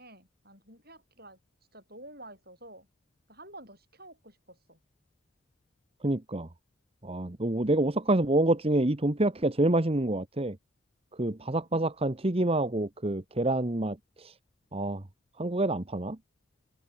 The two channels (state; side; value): normal; both; correlation 0.58